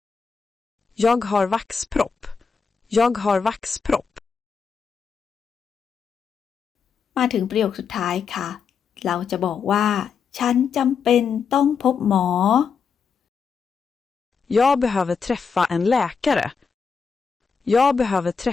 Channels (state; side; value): quieter; right; 5.9 dB